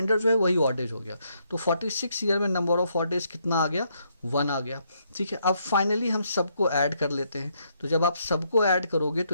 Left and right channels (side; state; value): both; inverted; correlation -0.74